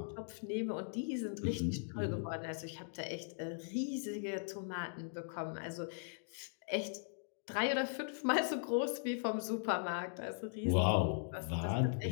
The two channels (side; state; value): right; silent; digital silence